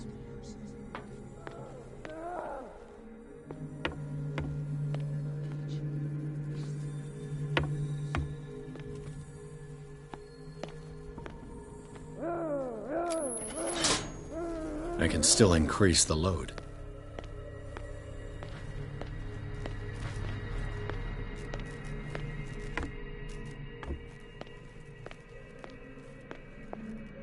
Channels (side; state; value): both; identical; correlation 1.00